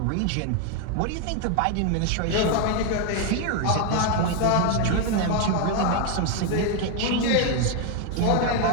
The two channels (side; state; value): both; different; correlation 0.01